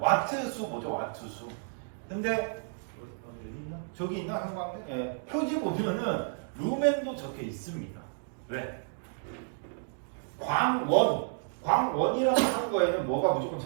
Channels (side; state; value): left; silent; digital silence